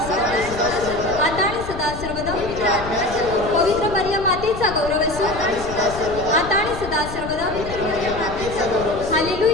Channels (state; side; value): noise; left; rumble, 10 dB below the sound